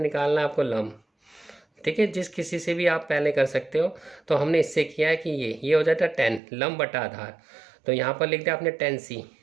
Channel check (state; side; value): drops out; left; at 6.4 s